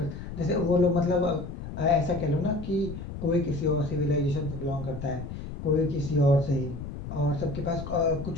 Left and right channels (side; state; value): left; noise; rumble, 9 dB below the sound